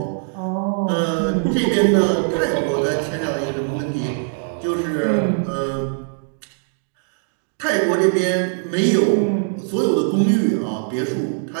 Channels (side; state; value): left; silent; digital silence